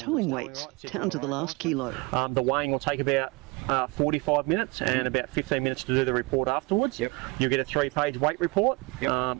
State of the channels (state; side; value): quieter; left; 26.0 dB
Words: weights, down to the last kilo. The weighing will take about 45 minutes and about 15 minutes to do the report afterwards. Yep. You'll get a 3-page weight report. Yep.